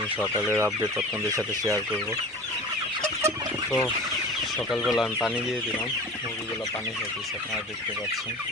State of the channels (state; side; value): normal; both; correlation 0.36